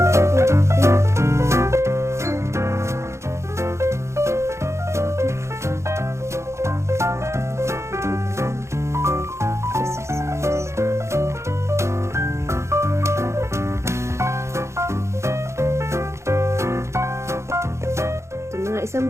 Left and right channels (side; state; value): left; late; 0.14 ms